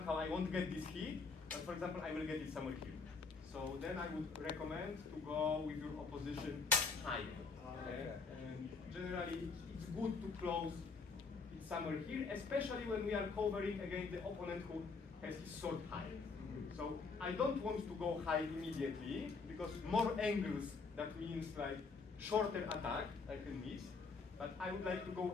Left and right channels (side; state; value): right; quieter; 4.6 dB